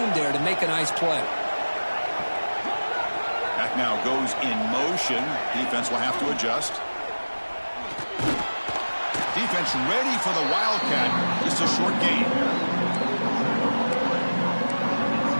there to make a nice play. Back now goes in motion. Defense will have to adjust. Defense ready for the wildcat. Just a short gain.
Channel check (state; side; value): inverted; both; correlation -1.00